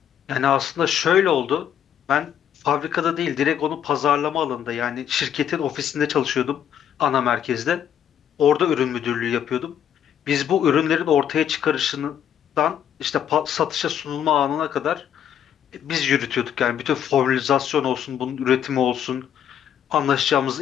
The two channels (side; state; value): right; quieter; 9.4 dB